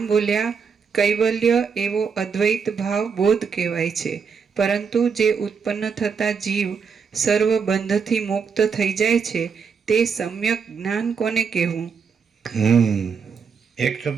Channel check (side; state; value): left; quieter; 6.0 dB